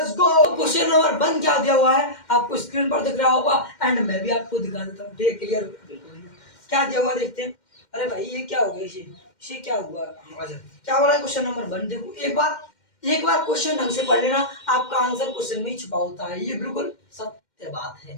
गो। क्वेश्चन नंबर 1 क्या दिया हुआ है आपको स्क्रीन पर दिख रहा होगा एंड मैं भी आपको दिखा देता हूँ। ठीक है, क्लियर क्या दिया हुआ देखते हैं। अरे भाई ये क्या हो गया, इसे क्या हुआ, क्या हो रहा है। क्वेश्चन नंबर 1 देखो, एक बार क्वेश्चन ढंग से पढ़ लेना, आपका आंसर क्वेश्चन में ही छुपा होता है, ये बिल्कुल सत्य बात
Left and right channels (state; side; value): late; right; 2.1 ms